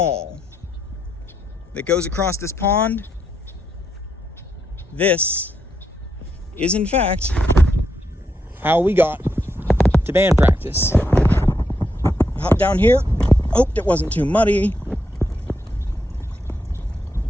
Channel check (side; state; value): both; normal; correlation 0.81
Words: that goes across this pond, this is in fact how we got to band practice. Hop down here, hoped it wasn't too muddy,